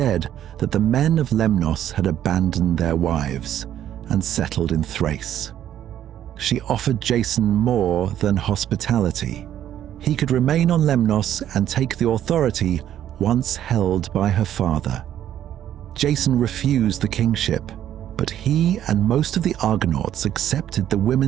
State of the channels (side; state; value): left; quieter; 11.1 dB